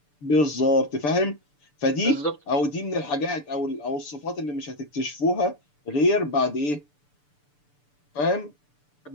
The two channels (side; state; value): right; late; 6.8 ms